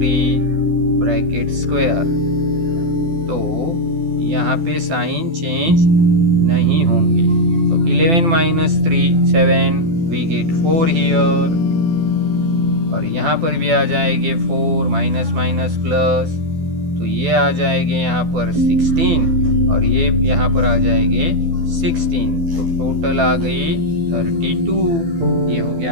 bracket square. तो यहाँ पे साइन चेंज नहीं होंगे। तो 11 माइनस 3 7 वी गेट 4 हियर और यहाँ पर भी आ जाएंगे 4 माइनस माइनस प्लस। तो ये आ जाएंगे यहाँ पर 16 और ये यहाँ पर आ जाएंगे 16। तो टोटल आ गई 32। ये हो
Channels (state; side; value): late; left; 12 ms